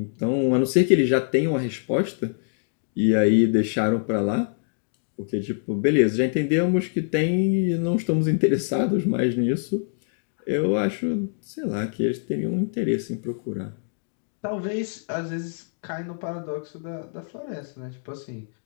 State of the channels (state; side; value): silent; right; digital silence